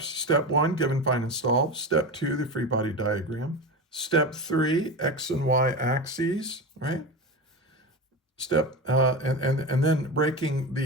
Step 1, given, find, and solve. Step 2, the free body diagram. Step 3, x and y axes, right? Step, and then breaking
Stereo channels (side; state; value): both; normal; correlation 0.23